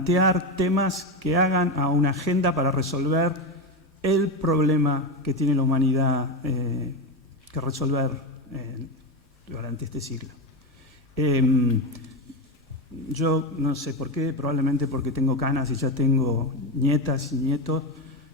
temas que hagan a una agenda para resolver el problema que tiene la humanidad que resolver durante este siglo. Yo no sé por qué, probablemente porque tengo canas y ya tengo nietas y nietos,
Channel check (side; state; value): both; normal; correlation 0.15